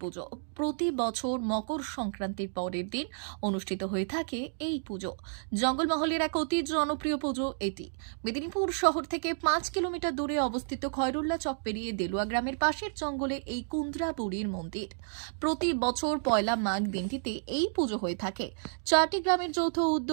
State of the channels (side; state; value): left; silent; digital silence